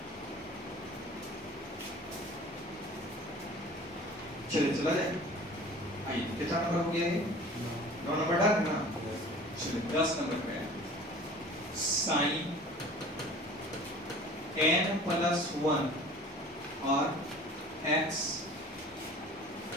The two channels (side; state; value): both; normal; correlation 0.44